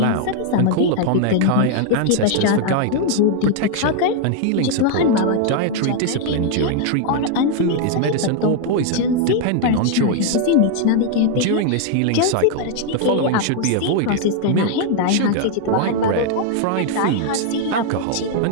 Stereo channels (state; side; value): different; both; correlation 0.00